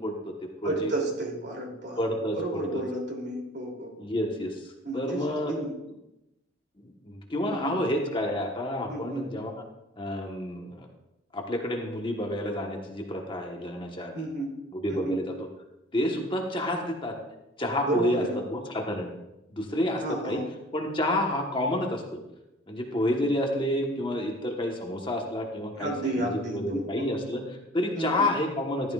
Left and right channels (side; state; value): both; normal; correlation 0.47